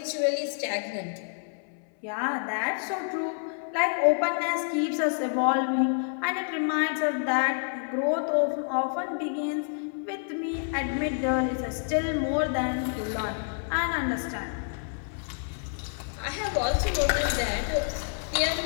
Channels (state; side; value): silent; right; 59 dB below the other